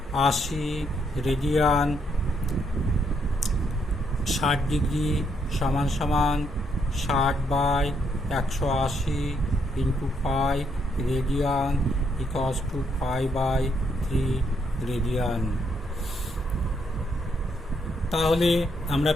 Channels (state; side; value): normal; both; correlation 0.75